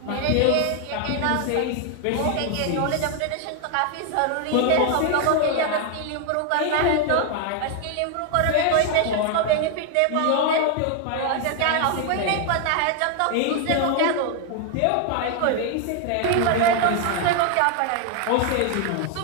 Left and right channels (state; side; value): different; both; correlation 0.00